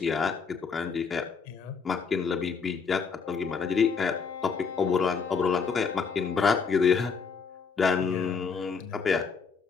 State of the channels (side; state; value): right; quieter; 5.6 dB